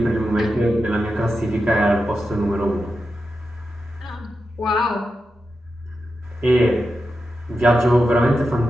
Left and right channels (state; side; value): normal; both; correlation 0.89